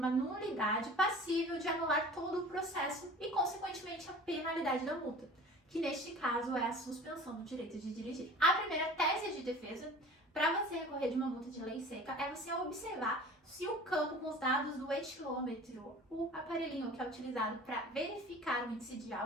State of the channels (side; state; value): both; normal; correlation 0.42